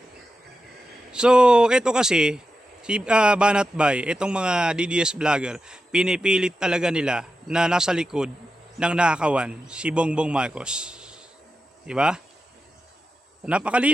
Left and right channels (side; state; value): both; normal; correlation 0.90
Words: So, ito kasi, si Banat Bay, itong mga DDS vlogger, pinipilit talaga nila na nasa likod ng nakakawan si Bongbong Marcos. Diba?